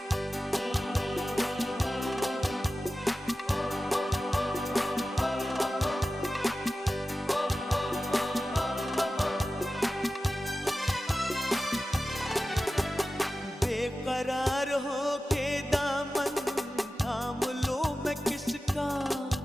बेकरार हो के दामन थाम लो मैं किसका,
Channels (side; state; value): both; normal; correlation 0.94